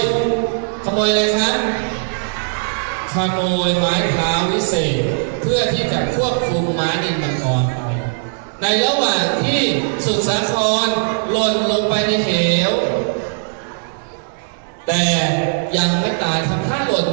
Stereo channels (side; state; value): left; silent; digital silence